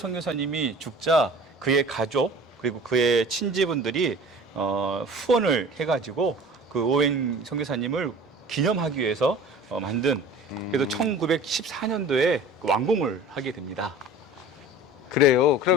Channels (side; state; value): both; normal; correlation 0.42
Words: 죽자 그의 가족 그리고 그의 친지분들이 후원을 해가지고 그 오웬 선교사님을 기념하기 위해서 만든 그래서 1914년도에 완공을 하게 됩니다. 그래요.